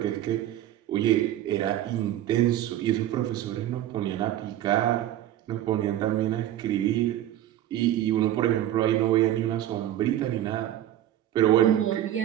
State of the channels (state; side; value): quieter; left; 12.4 dB